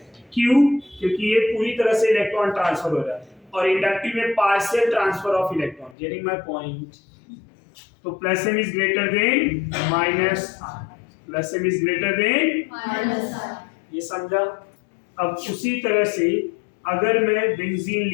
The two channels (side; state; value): right; drops out; at 6.0 s